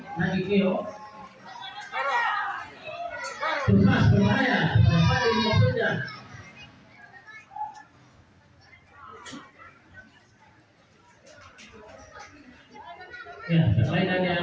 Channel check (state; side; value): identical; both; correlation 1.00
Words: Nagakeo. Terus berbahaya, Fadil maksudnya. Ya, permainan